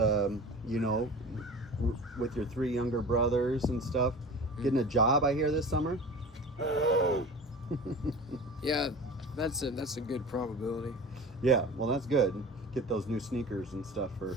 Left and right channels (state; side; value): normal; both; correlation 0.37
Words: with your 3 younger brothers and stuff. Getting a job, I hear, this summer. Yeah, that's a good probability. Yeah, well, that's good. Get those new sneakers and stuff for